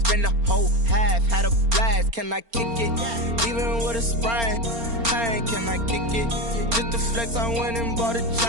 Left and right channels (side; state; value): left; late; 4.3 ms